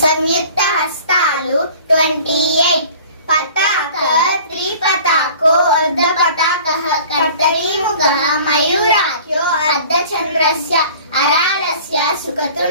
హస్తాలు 28 పతాక త్రిపతాకో అర్ధపతాకః కర్తరీముఖః మయూరాఖ్యో అర్ధచంద్రస్య అరాలస్య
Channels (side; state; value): both; inverted; correlation -0.47